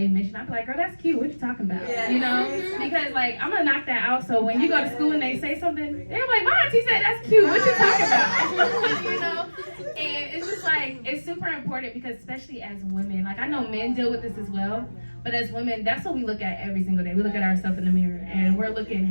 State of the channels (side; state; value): both; inverted; correlation -1.00